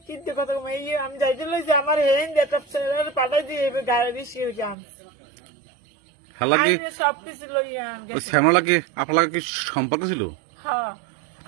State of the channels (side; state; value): left; drops out; at 4.8 s